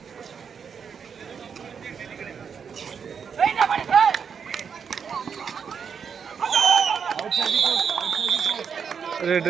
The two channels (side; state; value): left; quieter; 6.7 dB